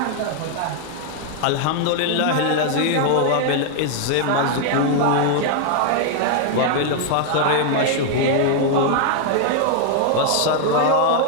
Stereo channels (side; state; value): both; different; correlation 0.00